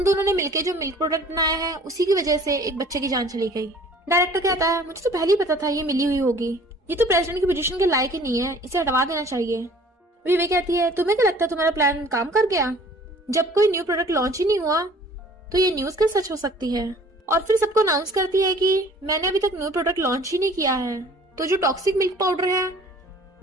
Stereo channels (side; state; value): both; normal; correlation 0.51